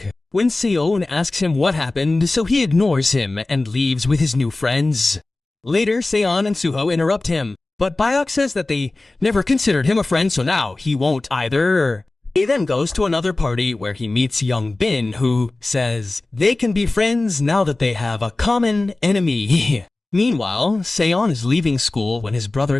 When Se-yoon asks him what happened, so he ignores him and leaves with his new friends. Later, Se-yeon and Suho interrupt him, but Bayok says that they never considered him a friend, so now he won't either. He then goes to another party where he meets Young Bin, who says they can be friends now that they have a common enemy. Meanwhile, Se-yeon is leaving school when his brother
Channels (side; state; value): right; quieter; 3.0 dB